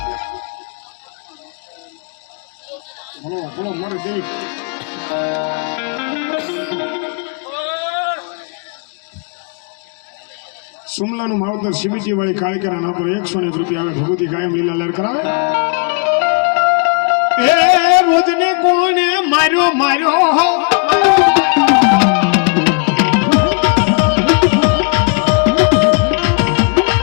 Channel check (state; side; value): quieter; right; 35.4 dB